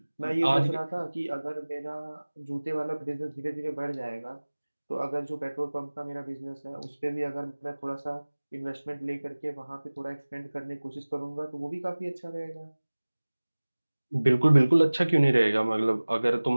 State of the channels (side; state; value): both; inverted; correlation -1.00